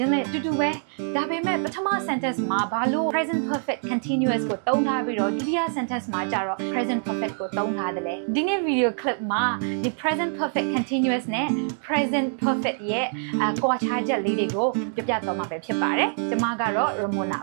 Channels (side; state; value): left; silent; 62 dB below the other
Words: င်းလဲအတူတူပဲဒါပေမဲ့ပထမ sentence မှာဘာလို့ present perfect continuous ကိုသုံးထားပြီးတော့ဒုတိယ sentence မှာကျတော့ present perfect ကိုသုံးထားတယ်လေဒီနေ့ video clip မှာဒီ present perfect continuous နဲ့ present perfect ရဲ့ကွာခြားချက်လေးတွေကိုပြပြသွားမှာပဲဖြစ်ပါတယ်ကျွန်မကတော့ Ramona